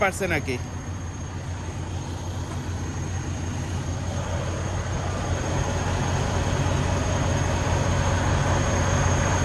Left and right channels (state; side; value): identical; both; correlation 1.00